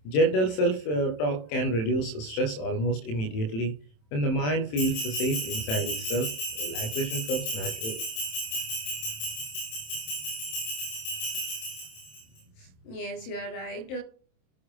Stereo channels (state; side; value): late; right; 27 ms